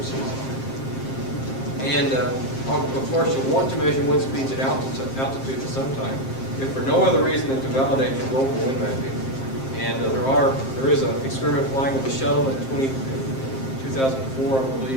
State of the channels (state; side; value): late; right; 7.6 ms